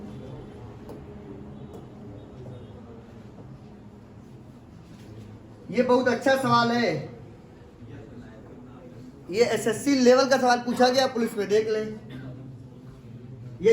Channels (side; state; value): both; identical; correlation 1.00